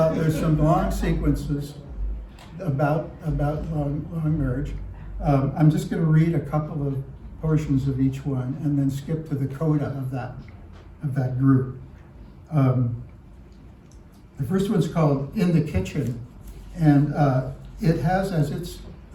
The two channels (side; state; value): both; identical; correlation 1.00